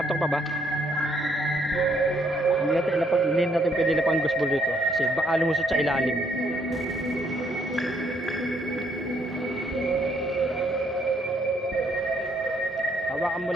pa ba? Hindi natin pwede lapang ghost ball dito kasi baka lumusot sa ilalim. Hawakan mo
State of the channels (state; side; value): normal; both; correlation 0.70